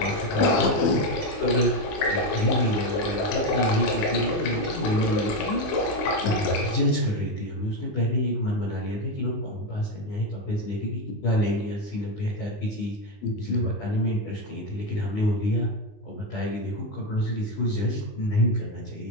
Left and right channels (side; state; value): right; late; 20 ms